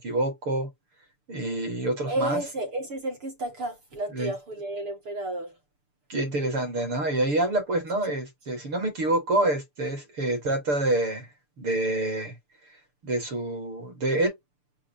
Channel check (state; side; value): late; left; 6.8 ms